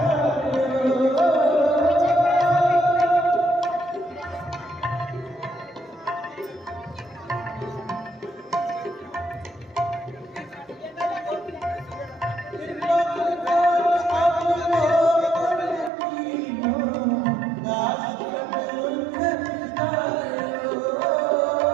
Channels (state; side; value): drops out; left; at 15.9 s